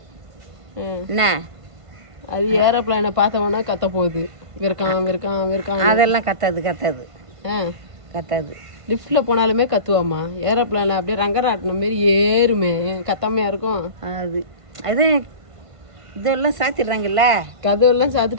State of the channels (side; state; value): left; late; 1.5 ms